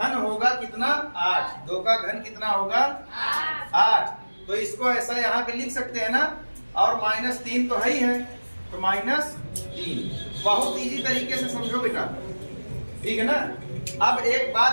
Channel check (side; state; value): both; inverted; correlation -1.00